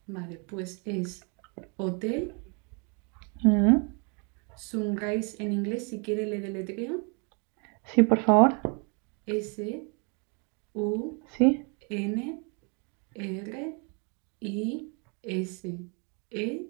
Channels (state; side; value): quieter; left; 35.9 dB